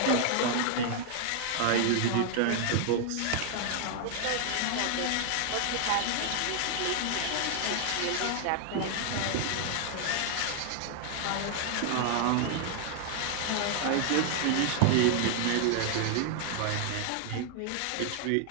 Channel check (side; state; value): both; different; correlation 0.00